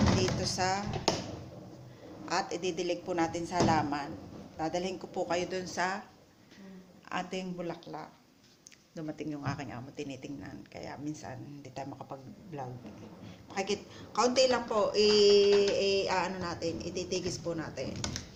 dito sa at ididilig po natin sa halaman. Dadalhin ko po kayo dun sa ating bulaklak. Dumating yung aking amo, tinitingnan. Kaya minsan, hindi tayo makapag-vlog. Kaunti lang po, ano natin, ititigis po natin.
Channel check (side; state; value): both; identical; correlation 1.00